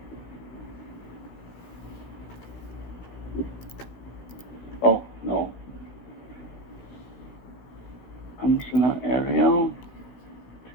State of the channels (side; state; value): right; late; 16 ms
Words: Oh no. Functional Arial.